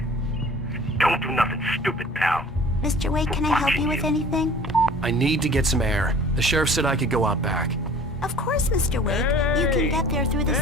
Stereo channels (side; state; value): both; normal; correlation 0.47